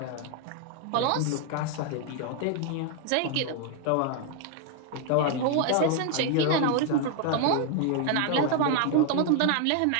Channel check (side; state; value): both; different; correlation 0.00